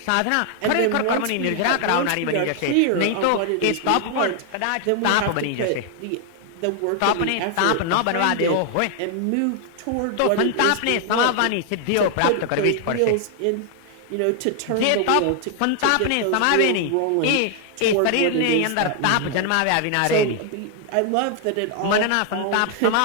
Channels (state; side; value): different; both; correlation 0.00